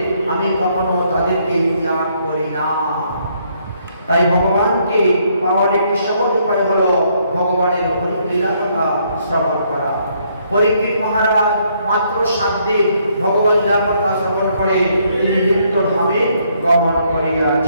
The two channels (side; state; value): both; inverted; correlation -0.70